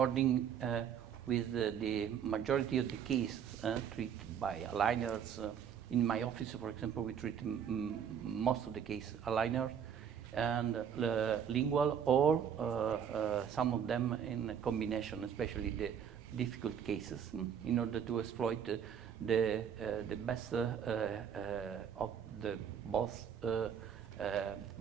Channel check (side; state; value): left; quieter; 8.2 dB